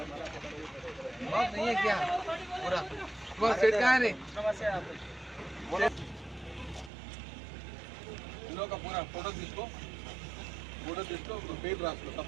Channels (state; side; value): drops out; left; at 6.9 s